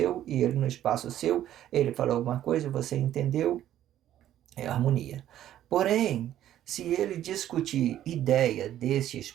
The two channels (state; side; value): quieter; left; 12.0 dB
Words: e ele no espaço seu. Ele falou alguma coisa, você entendeu, é harmonia. Porém, se ele discutir ideia desse